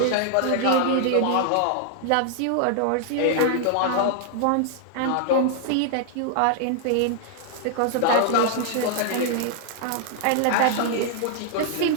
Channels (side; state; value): both; different; correlation 0.00